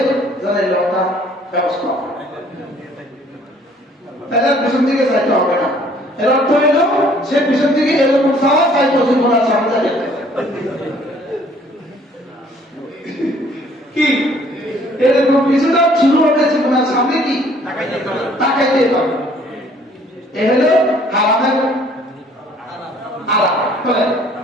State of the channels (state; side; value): normal; both; correlation 0.58